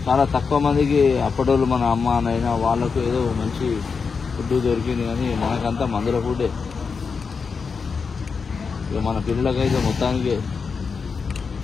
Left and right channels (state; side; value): quieter; right; 5.3 dB